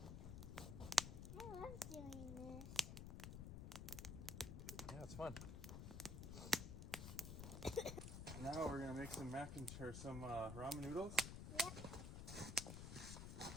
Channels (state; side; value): noise; left; rumble, 6 dB below the sound